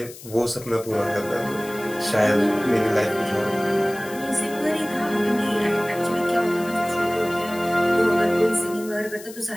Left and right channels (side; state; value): left; noise; hiss, 17 dB below the sound